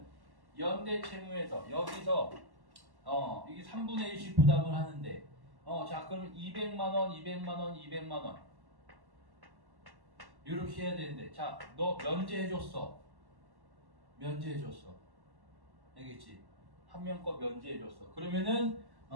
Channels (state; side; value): late; left; 1.1 ms